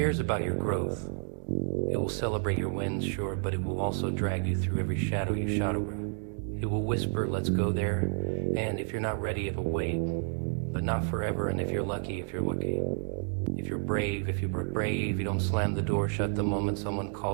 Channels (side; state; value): left; silent; 58 dB below the other